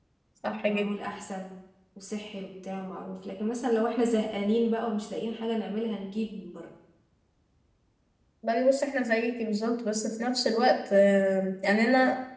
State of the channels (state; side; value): identical; both; correlation 1.00